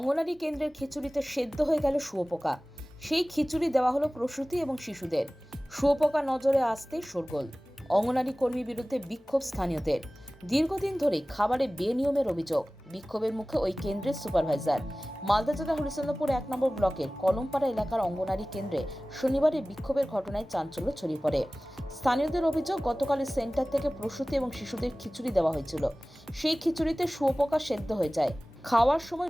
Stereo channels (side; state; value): both; normal; correlation 0.98